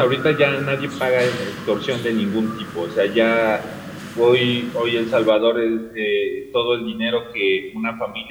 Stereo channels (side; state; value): both; identical; correlation 1.00